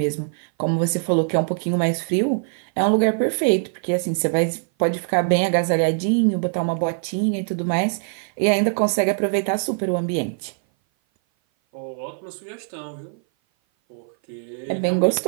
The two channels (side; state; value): left; silent; 58 dB below the other